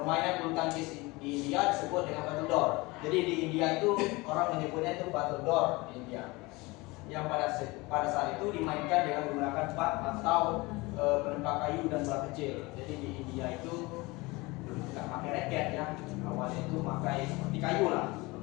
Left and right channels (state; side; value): quieter; right; 23.4 dB